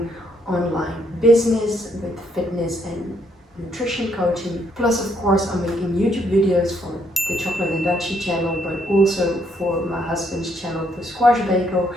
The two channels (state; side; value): normal; both; correlation 0.72